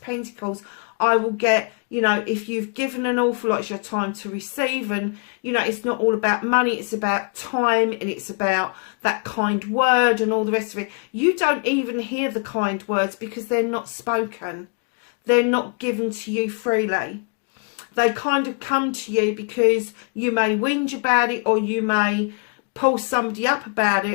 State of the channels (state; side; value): quieter; right; 37.7 dB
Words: Pentacles, I will get, you know, if you've given an awful lot, it's your time to receive. And, you know, it's not all about money. It's about time, and it's about that kind word and all the rest of it. You don't even hear the kind words because they're not spoken. They're not given to you freely. They kind of come to you because you may whinge about it, or you may pull somebody up about